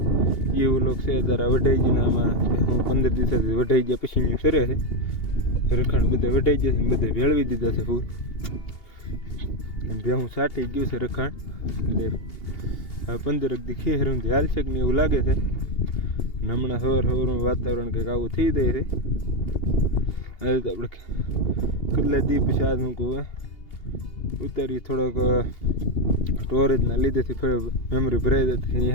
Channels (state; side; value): late; right; 2.8 ms